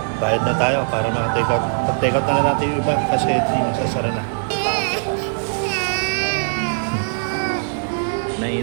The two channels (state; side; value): silent; left; digital silence